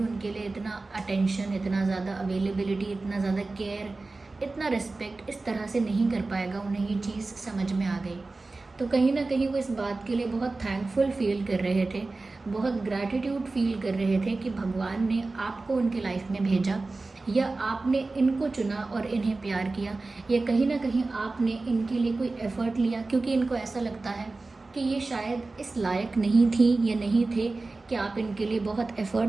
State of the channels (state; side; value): quieter; left; 3.4 dB